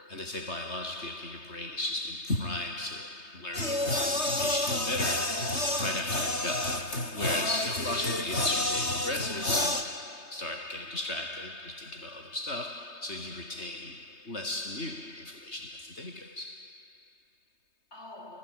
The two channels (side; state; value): right; late; 3.3 ms